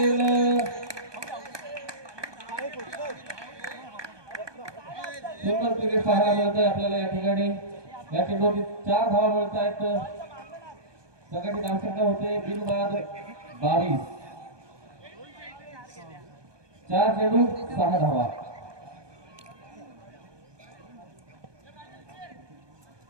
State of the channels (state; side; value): late; left; 1.2 ms